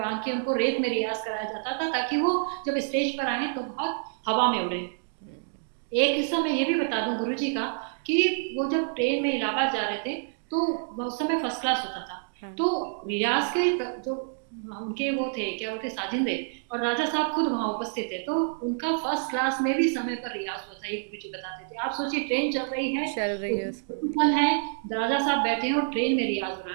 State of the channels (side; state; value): left; silent; digital silence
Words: के उनको रेत में रियाज कराया जाता था, ताकि वो जब स्टेज पर आए तो बहुत हवा में उड़े। एक हिस्सा मैं ये भी बता दूं गुरुजी का, कि वो जब ट्रेन में इलाहाबाद जा रहे थे, तो उस समय फर्स्ट क्लास होता था। हाँ। तो रियाज के जो उनके वो थे, क्या बोलते, साजिंदे और राजा साहब खुद वहां उपस्थित थे, तो उनका फर्स्ट क्लास में भी समय पर रियाज हुआ था, ये गुरुजी बताते थे। आप सोचिए, ट्रेन चल रही है, चल रही है उसमें भी। है, राजा साहब बैठे हैं और ट्रेन में रियाज हो रहा